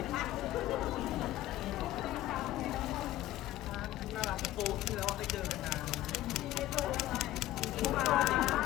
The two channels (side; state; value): right; quieter; 14.9 dB